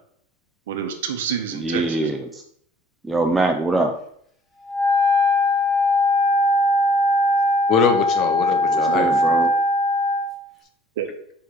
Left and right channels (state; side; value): normal; both; correlation 0.58